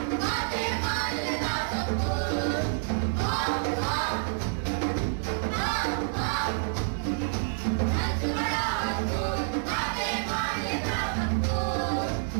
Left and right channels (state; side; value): silent; left; 59 dB below the other